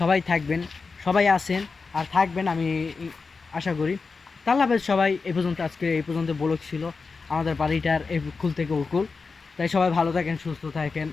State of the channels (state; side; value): quieter; right; 4.5 dB